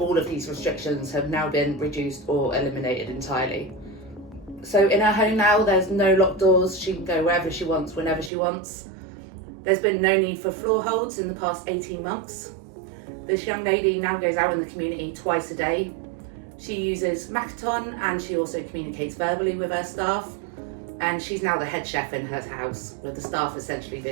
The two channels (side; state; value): left; drops out; at 8.3 s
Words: of these restrictions have now been reduced or eliminated entirely. So in her home now, there's no locked doors. She can go wherever she wants, whenever she wants. There's been no need for floor holds in the past 18 months. This young lady now goes out in the community twice a day. She uses Makaton and she also communicates verbally with her staff. And she's now the head chef in her house, with the staff essentially